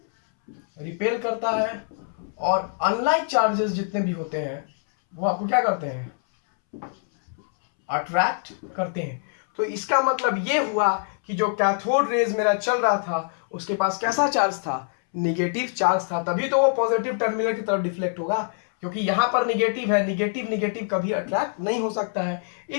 रिपेल करता है, और अनलाइक चार्जेस जितने भी होते हैं वो आपको क्या करते हैं? अट्रैक्ट करते हैं। तो इसका मतलब ये हुआ कि जो कैथोड रेज मेरा चल रहा था, उसके पास कैसा चार्ज था? निगेटिव चार्ज था, तभी तो वो पॉजिटिव टर्मिनल की तरफ डिफ्लेक्ट होगा, क्योंकि यहां पर निगेटिव है। निगेटिव निगेटिव कभी अट्रैक्ट नहीं हो सकता है।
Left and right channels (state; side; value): silent; right; 62 dB below the other